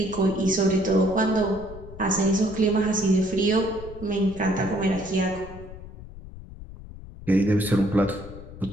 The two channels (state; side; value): noise; left; rumble, 15 dB below the sound